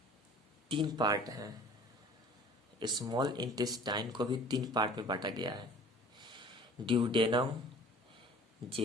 3 पार्ट हैं। स्मॉल इंटेस्टाइन को भी 3 पार्ट में बांटा गया है, ड्यूडेनम,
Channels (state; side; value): normal; both; correlation 0.47